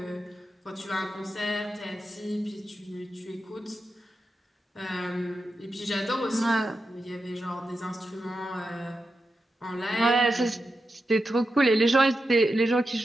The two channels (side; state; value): both; normal; correlation 0.89